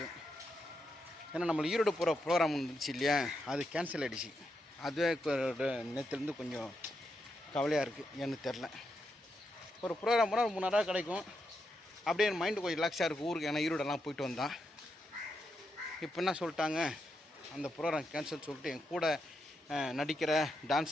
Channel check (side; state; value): both; normal; correlation 0.83